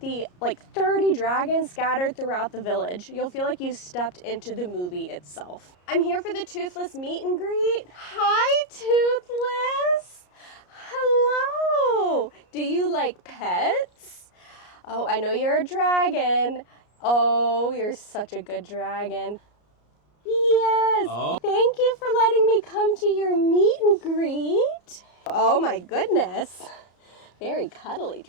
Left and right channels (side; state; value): right; late; 33 ms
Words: 30 dragons scattered throughout the village. You'll feel like you've stepped into the movie itself. I'm here for the Toothless meet and greet. Hi, Toothless. Hello. Do you like pets? Oh, I know you're a dragon. Oh, you're such a good dragon. Yes, Thank you for letting me come to your meet and greet. Oh my goodness, very cuddly